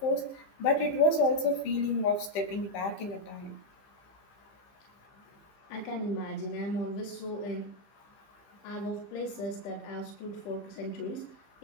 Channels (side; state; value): right; late; 15 ms